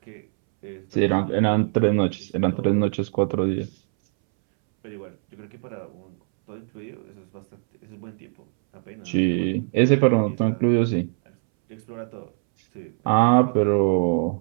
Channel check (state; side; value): silent; left; 63 dB below the other